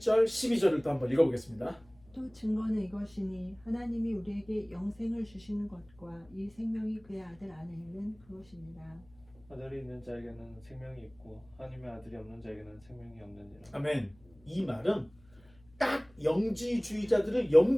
12절을 또 한번 읽어보겠습니다. 또 증거는 이것이니 하나님이 우리에게 영생을 주시는 것과 이 생명이 그의 아들 안에 있는 그것입니다. 아들이 있는 자에게는 생명이 있고 하나님의 아들이 없는 자에게는 생명이 없느니라. 아멘. 이 말은 딱 영지주의자들을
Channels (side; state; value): left; noise; hum, 28 dB below the sound